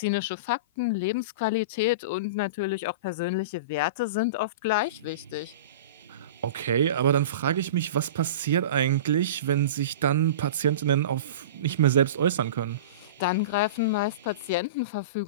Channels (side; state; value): both; inverted; correlation -0.31